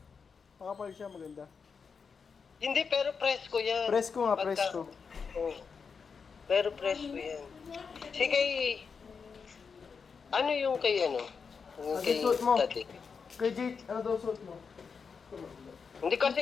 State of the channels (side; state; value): right; quieter; 5.7 dB